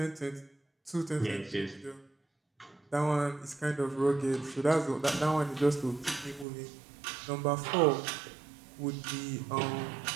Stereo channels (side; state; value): left; drops out; at 6.5 s